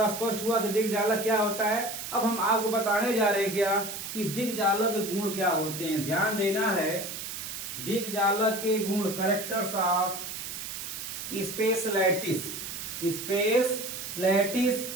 स्पष्ट हुआ कि दिग्जालक क्या होता है। अब हम आपको बताने जा रहे हैं क्या कि दिग्जालक के गुण क्या होते हैं। ध्यान देना है, दिग्जालक के गुण, कैरेक्टर्स ऑफ स्पेस लैटिस।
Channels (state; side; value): noise; right; hiss, 7 dB below the sound